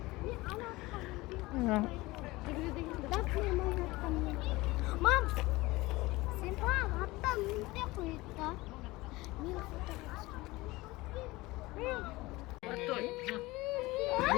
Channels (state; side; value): quieter; right; 20.7 dB